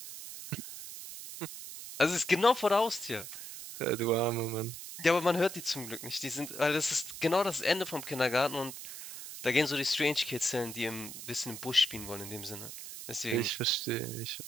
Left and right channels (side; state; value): right; noise; hiss, 10 dB below the sound